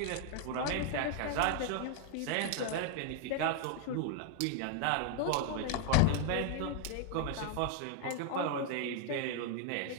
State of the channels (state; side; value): different; both; correlation 0.00